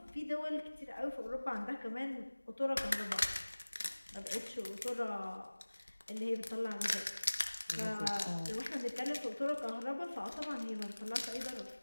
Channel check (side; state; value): both; inverted; correlation -1.00